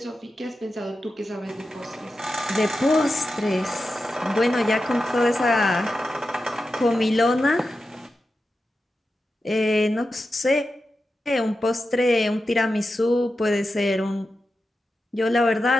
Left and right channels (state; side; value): normal; both; correlation 0.91